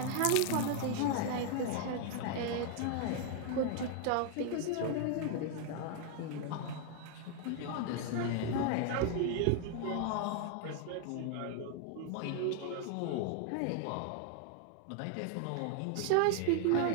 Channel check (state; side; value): different; both; correlation 0.00